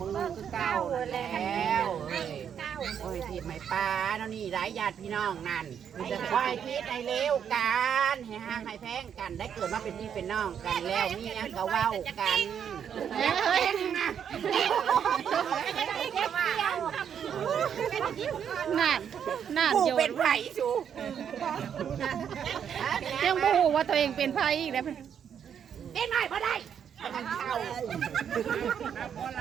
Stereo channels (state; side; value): quieter; left; 8.2 dB